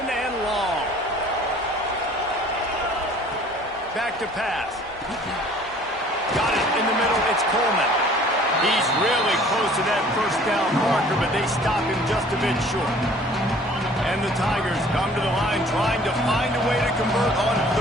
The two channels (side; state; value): both; normal; correlation 0.52